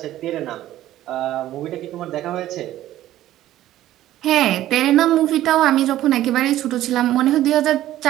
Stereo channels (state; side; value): quieter; left; 13.8 dB